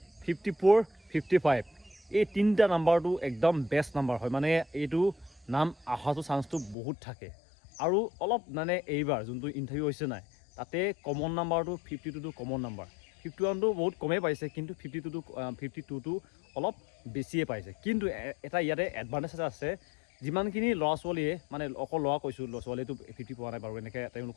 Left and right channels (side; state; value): right; drops out; at 6.8 s